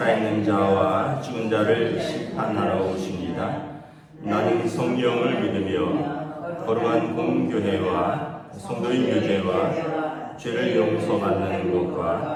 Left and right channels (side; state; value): both; identical; correlation 1.00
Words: 자와 죽은 자를 심판하러 오십니다. 나는 성령을 믿으며 거룩한 공교회와 성도의 교제와 죄를 용서받는